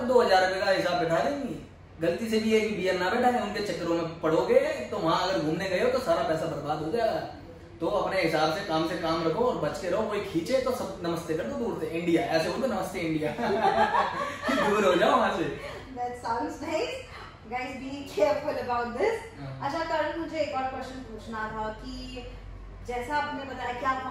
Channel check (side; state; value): both; identical; correlation 1.00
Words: 2000 रुपए का हिसाब बैठा देंगी। गलती से भी है कि बियर ना बैठाए, उनके चक्करों में पड़ोगे तो वहां अगर घूमने गए हो तो सारा पैसा बर्बाद हो जाएगा। तो अपने हिसाब से काम रखो और बच के रहो। कोई खींचे तो सब नमस्ते कर दो दूर से, इंडिया ऐसे बोलते, नमस्ते इंडिया दूर हो जाओ वहां से। That sounds nice. Guys, be careful about this. अच्छा करण, मुझे एक और क्वेश्चन पूछना था कि जैसा आपने बताया कि आप